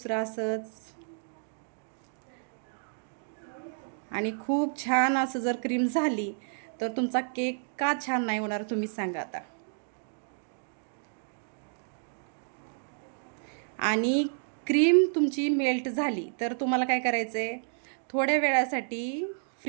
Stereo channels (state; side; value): silent; left; digital silence